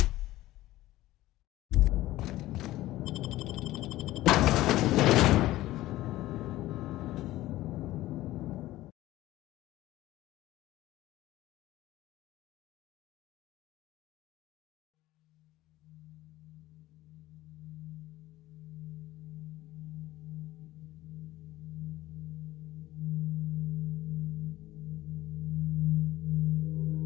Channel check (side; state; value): right; quieter; 16.3 dB